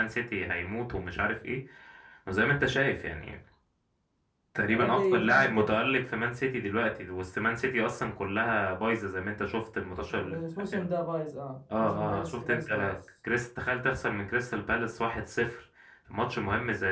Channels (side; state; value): both; identical; correlation 1.00